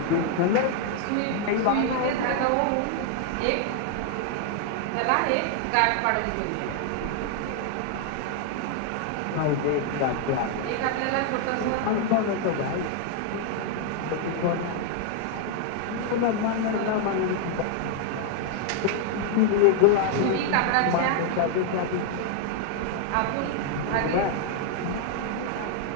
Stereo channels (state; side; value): different; both; correlation 0.00